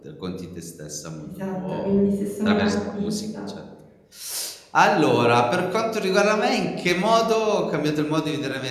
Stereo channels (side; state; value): both; identical; correlation 1.00